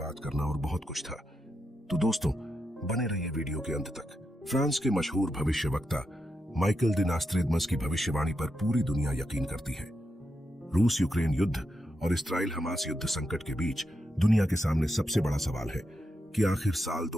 करना और बहुत कुछ था। तो दोस्तों, बने रहिए वीडियो के अंत तक। फ्रांस के मशहूर भविष्यवक्ता माइकल द नोस्ट्रैडमस की भविष्यवाणी पर पूरी दुनिया यकीन करती है। रूस यूक्रेन युद्ध और इस्राइल हमास युद्ध संकट के बीच दुनिया के सामने सबसे बड़ा सवाल है कि आखिर साल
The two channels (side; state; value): both; normal; correlation 0.85